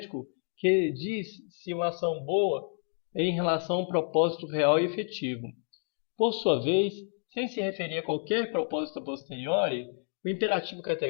que diz se uma ação boa é em relação a um propósito real e efetivo. Por sua vez, sem se referir a qualquer propósito a posteriori, o imperativo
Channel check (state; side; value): silent; right; 58 dB below the other